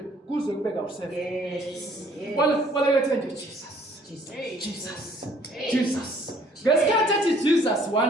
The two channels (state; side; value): normal; both; correlation 0.59